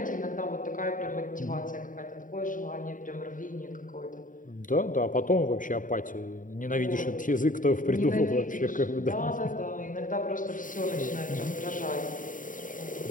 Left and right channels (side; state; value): right; late; 0.38 ms